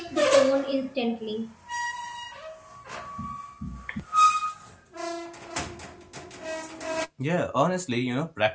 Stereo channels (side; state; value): both; identical; correlation 1.00